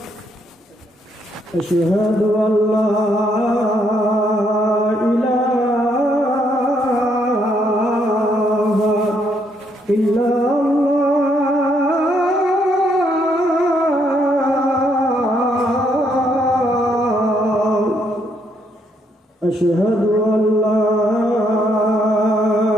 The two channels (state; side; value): normal; both; correlation 0.73